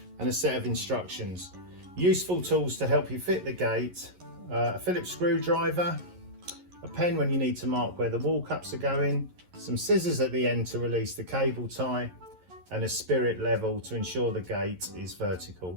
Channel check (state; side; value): late; left; 11 ms